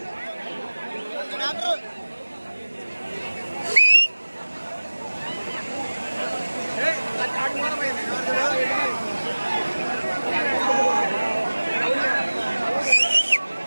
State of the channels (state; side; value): inverted; both; correlation -1.00